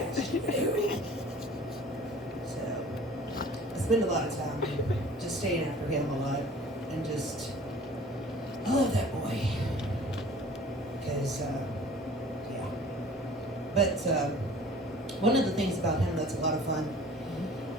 you to do. So, I spend a lot of time just staying after him a lot. And just, I love that boy. Because, yeah. But, one of the things about him that's a lot of fun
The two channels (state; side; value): normal; both; correlation 0.47